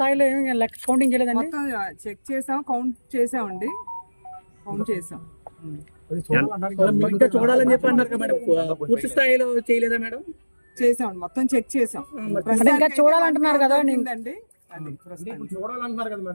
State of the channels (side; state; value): both; inverted; correlation -1.00